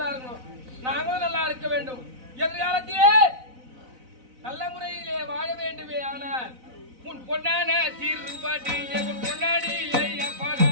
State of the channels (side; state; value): left; late; 4.0 ms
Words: இருக்கணும், நாங்களும் நல்லா இருக்க வேண்டும். எதிர்காலத்திலே நல்ல முறையிலே வாழ வேண்டுமே. ஆனால் உன் பொன்னான தீர்ப்பாட்டி உன் பொன்னாடி